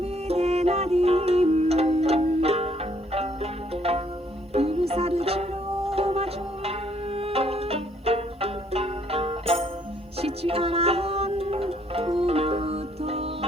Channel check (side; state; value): both; normal; correlation 0.66